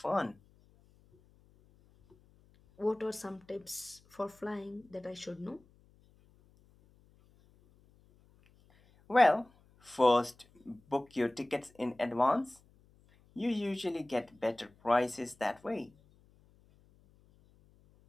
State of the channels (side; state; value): left; noise; hum, 30 dB below the sound